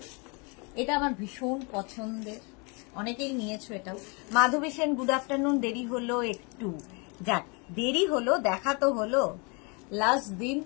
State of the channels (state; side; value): quieter; right; 32.0 dB